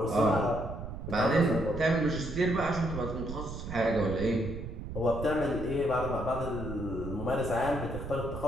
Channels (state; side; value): noise; right; rumble, 8 dB below the sound